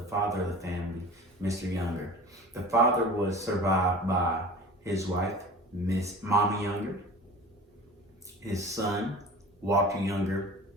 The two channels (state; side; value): normal; both; correlation 0.39